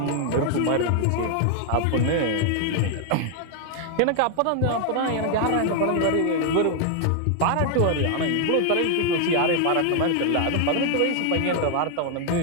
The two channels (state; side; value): different; both; correlation 0.00